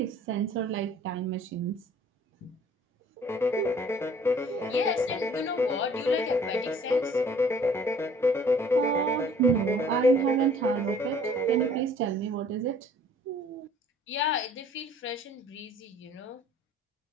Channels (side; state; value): both; normal; correlation 0.55